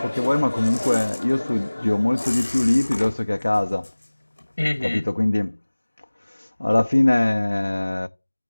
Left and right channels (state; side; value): inverted; both; correlation -1.00